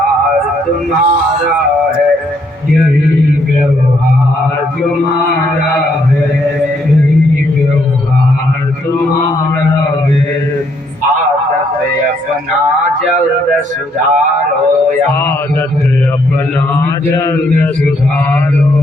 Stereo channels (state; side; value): normal; both; correlation 0.71